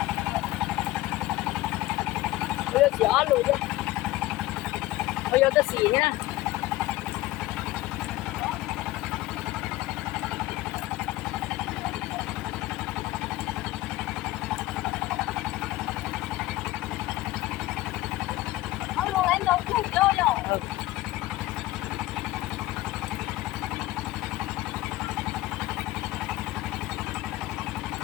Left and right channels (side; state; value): right; quieter; 17.0 dB